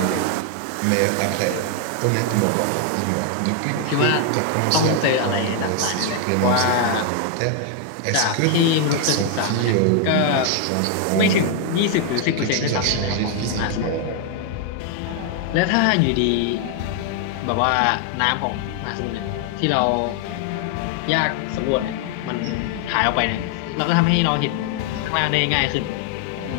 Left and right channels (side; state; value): both; different; correlation 0.00